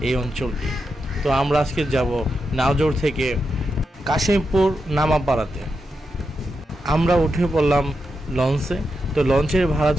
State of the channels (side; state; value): both; normal; correlation 0.87